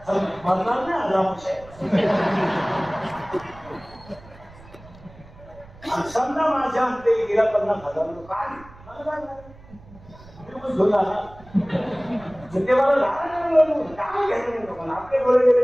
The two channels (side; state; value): right; noise; rumble, 22 dB below the sound